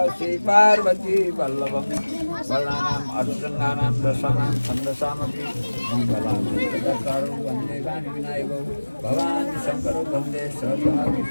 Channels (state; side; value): inverted; both; correlation -1.00